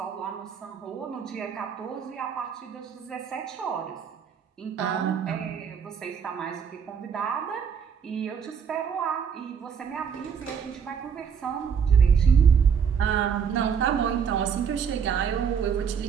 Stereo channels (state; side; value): quieter; left; 7.0 dB